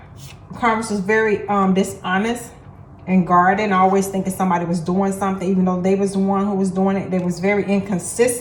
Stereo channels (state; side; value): identical; both; correlation 1.00